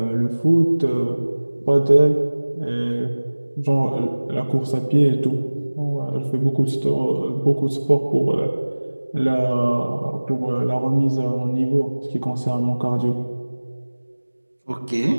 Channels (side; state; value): both; inverted; correlation -1.00